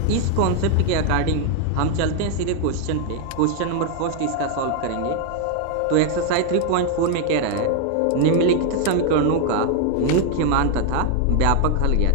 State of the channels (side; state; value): both; different; correlation 0.00